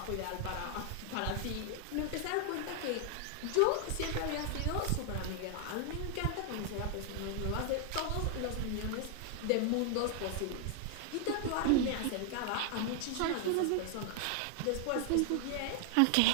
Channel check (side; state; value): both; different; correlation 0.00